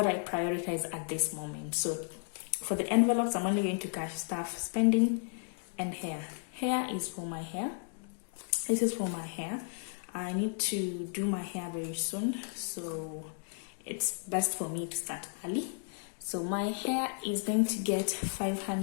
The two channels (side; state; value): right; silent; 55 dB below the other